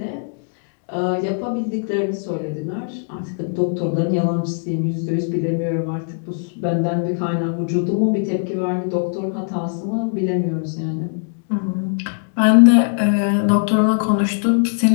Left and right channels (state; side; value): silent; right; digital silence